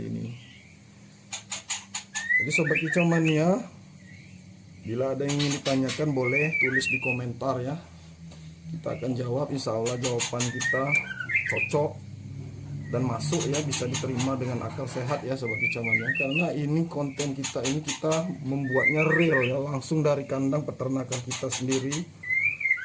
ini. Jadi sobat kicauannya, bila ada yang ingin ditanyakan boleh tulis di komentar ya, kita akan jawab. Insya Allah jawaban kita cocok dan masuk ya, bisa diterima dengan akal sehat ya sobat kicauannya. Karena ini konten kita ini, kita membuatnya real ya, langsung dari kandang peternakan kita sendiri.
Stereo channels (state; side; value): identical; both; correlation 1.00